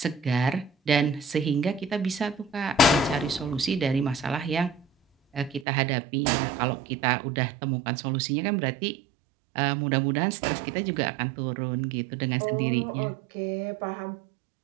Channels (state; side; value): drops out; left; at 5.7 s